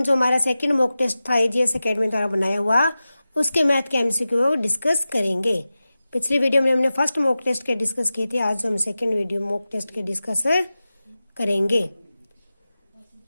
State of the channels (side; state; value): both; inverted; correlation -0.94